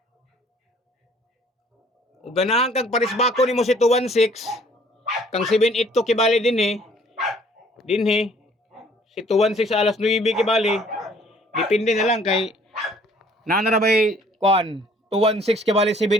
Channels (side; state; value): both; normal; correlation 0.58